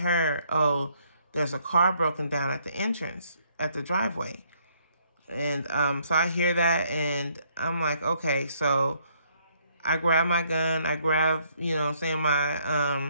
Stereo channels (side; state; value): both; inverted; correlation -0.68